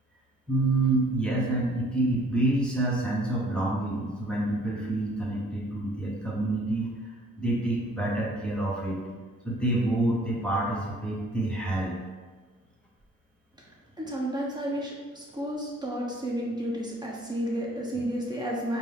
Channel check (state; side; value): normal; both; correlation 0.57